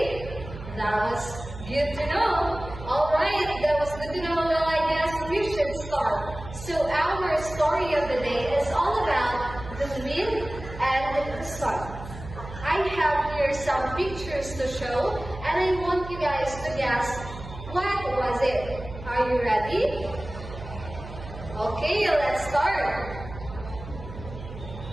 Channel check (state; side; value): noise; right; hum, 12 dB below the sound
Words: That was good to know. Alright, that was good to know. Well, I guess we should start. So our story of the day is all about the wind and the sun. I have here some pictures to show, and I want you guys to guess what was it. Are you ready? Okay, let's start.